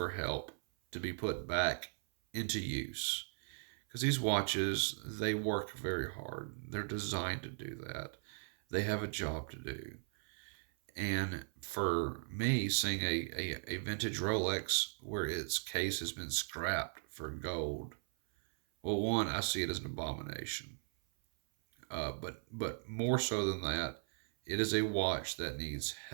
help to be put back into use. Because these watches, they work very hard. They're designed to do that. They have a job to do. And for me, seeing a vintage Rolex where its case has been scrapped for gold, well, one, I see it as an abomination. But more so than that, it is a watch that needs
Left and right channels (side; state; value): left; silent; 52 dB below the other